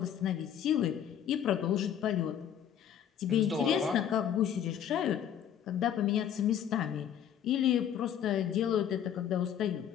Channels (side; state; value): right; quieter; 9.4 dB